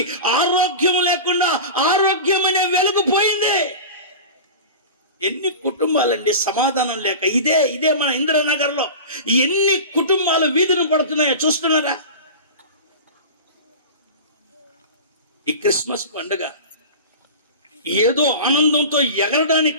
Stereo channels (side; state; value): both; inverted; correlation -0.31